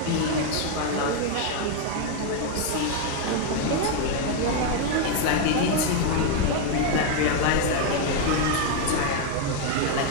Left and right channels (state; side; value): different; both; correlation 0.01